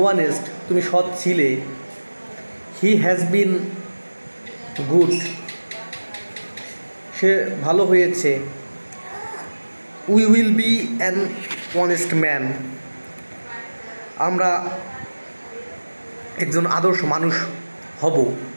তুমি সৎ ছিলে। হি হ্যাজ বিন গুড, সে ভালো হয়েছে। We will be an honest man, আমরা একজন আদর্শ মানুষ হব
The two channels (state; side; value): inverted; both; correlation -1.00